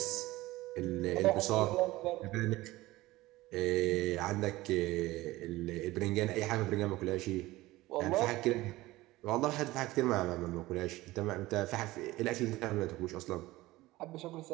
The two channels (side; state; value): left; quieter; 18.4 dB